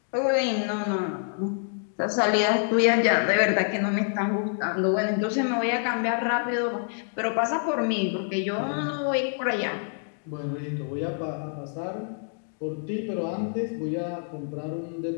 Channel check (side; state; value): right; silent; 60 dB below the other